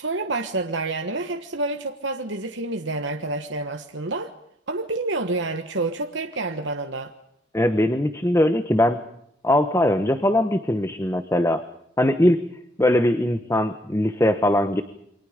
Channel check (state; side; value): normal; both; correlation 0.65